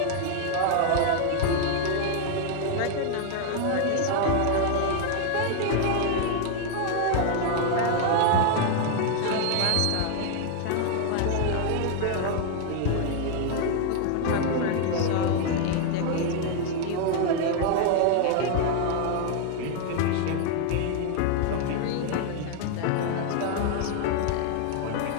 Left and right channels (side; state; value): both; different; correlation 0.00